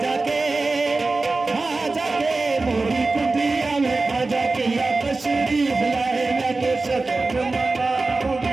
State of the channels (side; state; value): left; quieter; 3.5 dB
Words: के मोरी कुटिया में खाजा पिया तशरीफ लाए मैं तो सजन